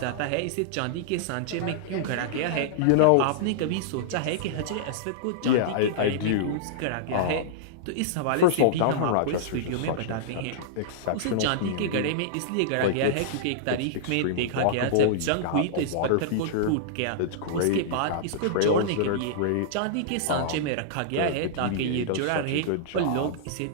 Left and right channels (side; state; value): both; different; correlation -0.02